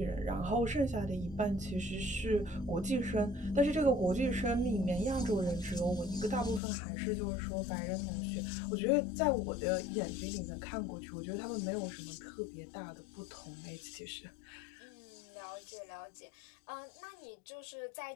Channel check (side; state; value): right; drops out; at 6.6 s